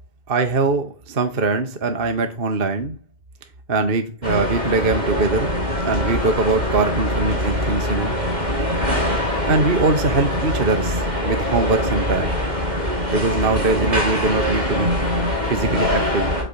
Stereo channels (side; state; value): left; late; 2.1 ms